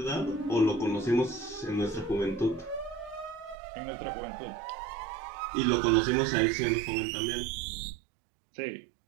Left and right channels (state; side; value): drops out; left; at 3.6 s